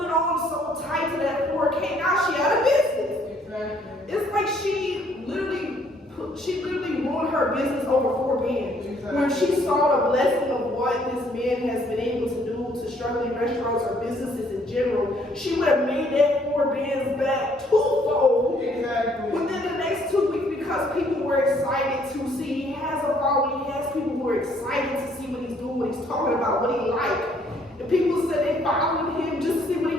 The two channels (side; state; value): both; normal; correlation 0.65